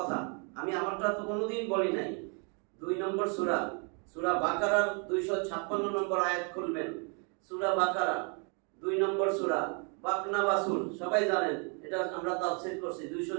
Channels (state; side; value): quieter; left; 37.3 dB